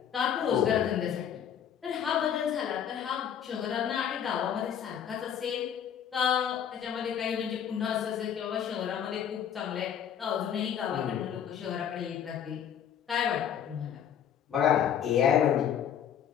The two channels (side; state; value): right; quieter; 9.0 dB